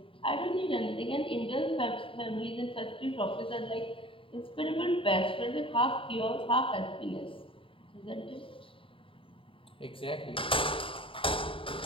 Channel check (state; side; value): late; right; 0.26 ms